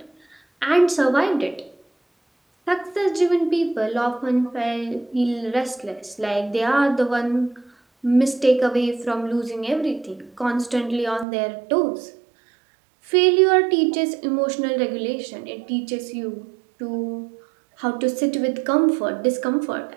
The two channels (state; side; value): drops out; left; at 11.2 s